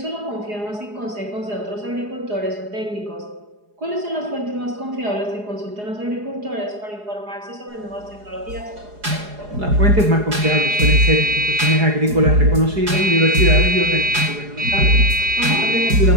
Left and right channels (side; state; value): left; late; 4.8 ms